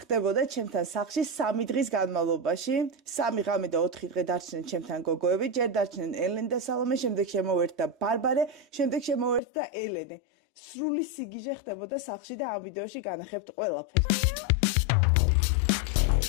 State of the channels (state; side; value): drops out; right; at 9.4 s